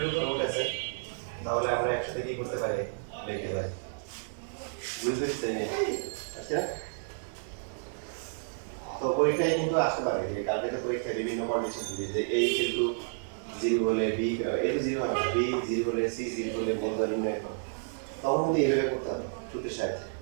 উপর রুট আছে তাহলে আমরা একসাথে কি করতে পারি? লিখতে পারি। বুঝতে পারছেন? আচ্ছা তো পরীক্ষায় কিন্তু আসতে পারে যে কালকে তো পরীক্ষায় বিভিন্ন কন্ডিশন দিয়ে যে a কিন্তু 0 হলে b a তো 0 হবে না, b 0 হলে c 0 হলে মূলধন নির্ণয় করো, তখন কিন্তু এইভাবে করতে হবে সূত্রের সাহায্যে।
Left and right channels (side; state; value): left; silent; 57 dB below the other